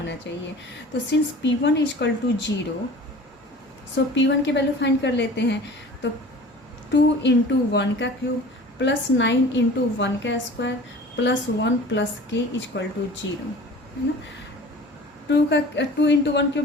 चाहिए। तो since p1 equal to 0, so p1 की वैल्यू फाइंड कर लेते हैं। तो 2 इंटू 1 का क्यूब प्लस 9 इंटू 1 का square plus 1 plus k equal to 0, है ना। 2 into 1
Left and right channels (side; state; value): both; normal; correlation 0.42